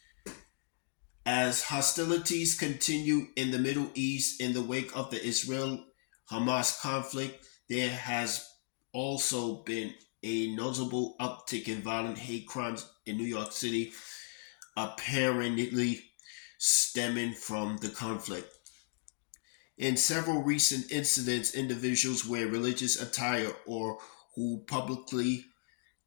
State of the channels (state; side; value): silent; right; digital silence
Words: As hostilities continue in the Middle East in the wake of the Israel-Hamas conflict, there has also been a notable uptick in violent hate crimes in New York City, apparently stemming from the conflict. In several recent incidents, individuals wear religious attire or who publicly